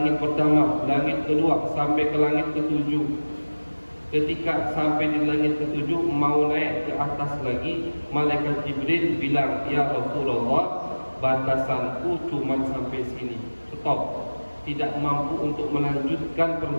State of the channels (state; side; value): inverted; both; correlation -1.00